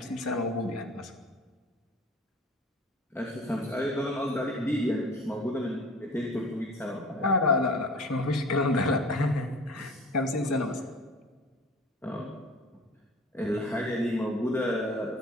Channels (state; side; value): normal; both; correlation 0.43